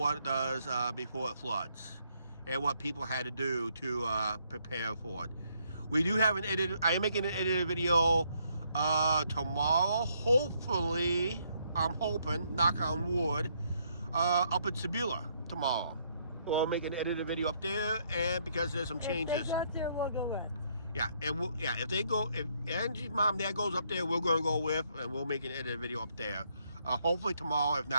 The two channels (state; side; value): inverted; both; correlation -0.72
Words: it does before it floods and what people had to do to prepare for it. We do have an edited. I am making an edited video tomorrow. Hopefully, I'm hoping, knock on wood, up in Sebula tomorrow. We'll make an edited video up there, and because there's some changes. If they go up there, we'll go with. Yeah, and if Angie's mom and dad goes up there, we're going to go with, and we'll make an edited video up there. Hopefully tomorrow. If